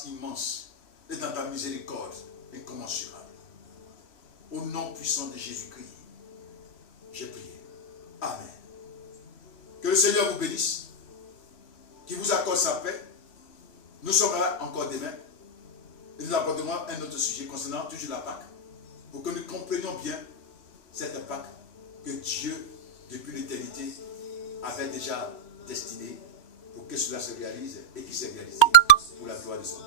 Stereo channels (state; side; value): late; right; 3.1 ms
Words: immense et dans ta miséricorde incommensurable. Au nom puissant de Jésus-Christ, j'ai prié. Amen. Que le Seigneur vous bénisse, qu'il vous accorde sa paix. Nous sommes là encore demain et nous aborderons un autre sujet concernant toujours la Pâque, pour que nous comprenions bien cette Pâque que Dieu, depuis l'éternité, avait déjà destinée pour que cela se réalise et qui s'est réalisé pour la gloire de son